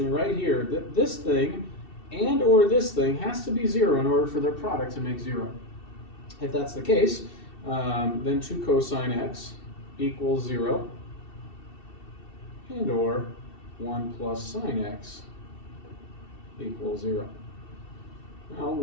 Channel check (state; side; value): late; right; 2.7 ms